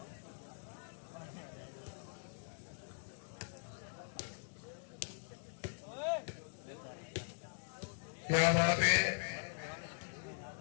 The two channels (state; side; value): silent; right; digital silence